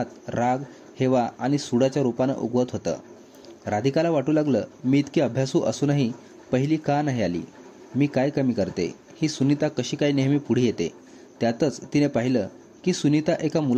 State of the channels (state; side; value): identical; both; correlation 1.00